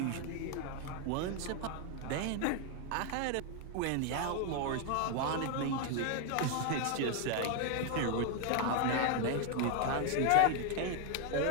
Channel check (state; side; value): different; both; correlation 0.01